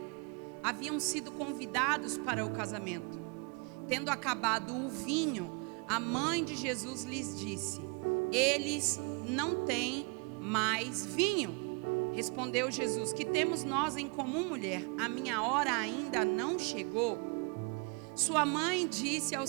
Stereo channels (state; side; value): quieter; left; 32.6 dB